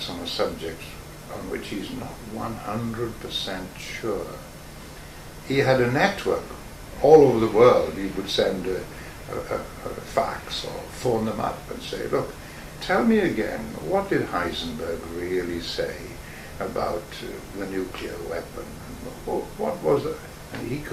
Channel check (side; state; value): both; identical; correlation 1.00